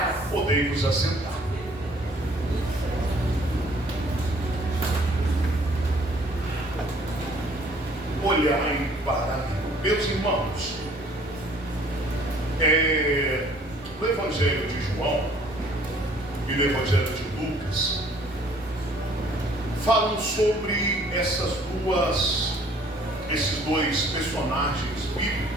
Podei-vos assentar. Olhai para mim. Meus irmãos, no Evangelho de João e no Evangelho de Lucas falam sobre esses dois personagens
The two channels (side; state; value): both; normal; correlation 0.58